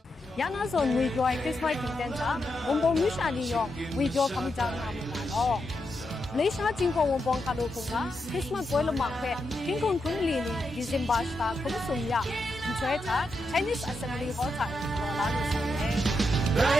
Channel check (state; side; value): normal; both; correlation 0.85